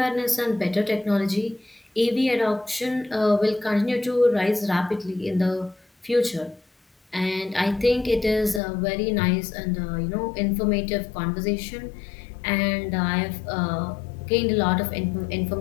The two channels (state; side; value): drops out; right; at 8.6 s